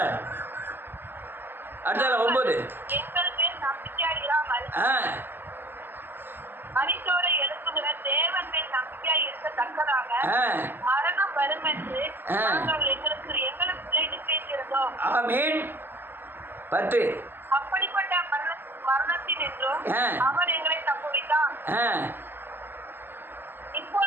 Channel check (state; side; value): late; left; 0.096 ms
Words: அடுத்தால 9. எங்கள் மேல் நம்பிக்கையாய் இராமல் மரித்தோரை எழுப்புகிற தேவன் மேல் நம்பிக்கையாய் இருக்கத்தக்கதாக மரணம் வரும் என்று நாங்கள் எங்களுக்குள்ளே நிச்சயித்திருந்தோம். ஆமென். 10. அப்படிப்பட்ட மரணத்தின் என்றும் அவர் எங்களை தப்புவித்தார்,